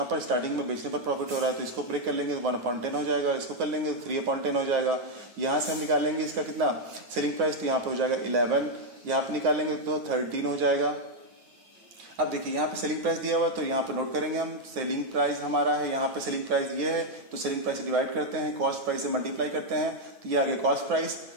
पर स्टार्टिंग में बेचने पर प्रॉफिट हो रहा है, तो इसको ब्रेक कर लेंगे तो 1/10 हो जाएगा, इसको कर लेंगे तो 3/10 हो जाएगा। यहाँ से हम निकालेंगे इसका कितना सेलिंग प्राइस, तो यहाँ पे हो जाएगा 11, यहाँ पे निकालेंगे तो 13 हो जाएगा। अब देखिए यहाँ पे सेलिंग प्राइस दिया हुआ, तो यहाँ पे नोट करेंगे हम, सेलिंग प्राइस हमारा है, यहाँ पे सेलिंग प्राइस ये है, तो सेलिंग प्राइस से डिवाइड करते हैं, कॉस्ट प्राइस से मल्टीप्लाई करते हैं, तो ये आ गया कॉस्ट प्राइस।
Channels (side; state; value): left; late; 9.5 ms